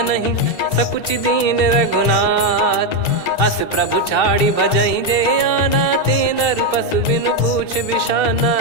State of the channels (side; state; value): right; late; 2.7 ms